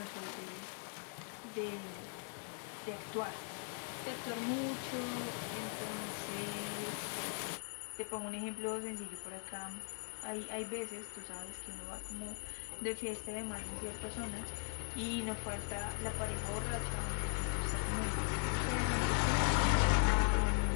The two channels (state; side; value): silent; right; 51 dB below the other